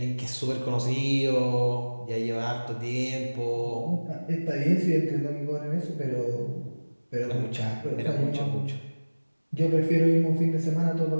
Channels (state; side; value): inverted; both; correlation -1.00